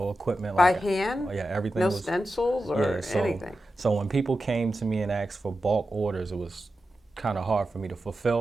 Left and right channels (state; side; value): normal; both; correlation 0.91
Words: equipment. By like hand? Yeah, everything No was stencils or anything? So when people came to me and asked for bulk orders, it was kind of hard for me to